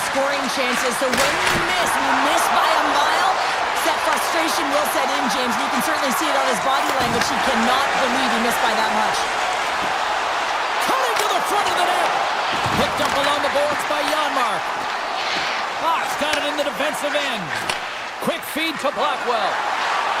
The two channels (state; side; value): identical; both; correlation 1.00